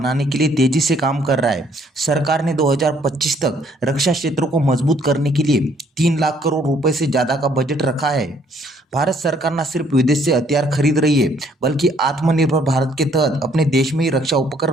के लिए तेजी से काम कर रहा है। सरकार ने 2025 तक रक्षा क्षेत्र को मजबूत करने के लिए 3 लाख करोड़ रुपए से ज्यादा का बजट रखा है। भारत सरकार न सिर्फ विदेश से हथियार खरीद रही है, बल्कि आत्मनिर्भर भारत के तहत अपने देश में ही रक्षा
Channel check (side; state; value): both; normal; correlation 0.64